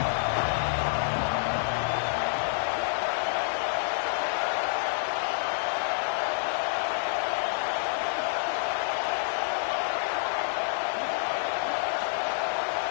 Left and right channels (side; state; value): right; silent; digital silence